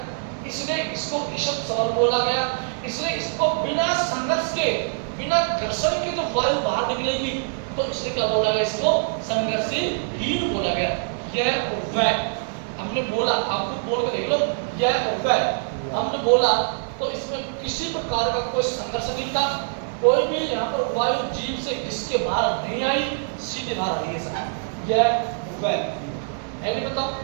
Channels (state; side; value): silent; left; digital silence